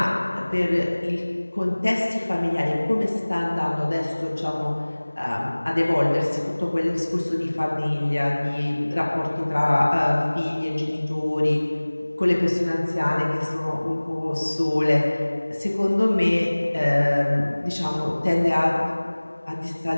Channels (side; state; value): both; inverted; correlation -1.00